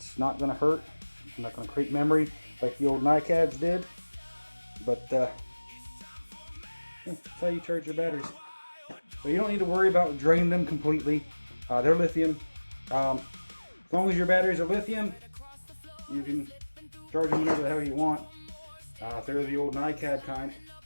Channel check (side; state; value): both; inverted; correlation -1.00